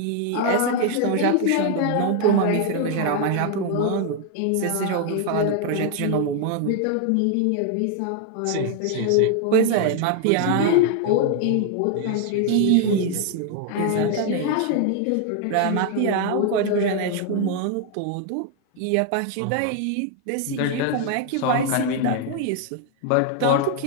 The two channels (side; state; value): both; different; correlation 0.00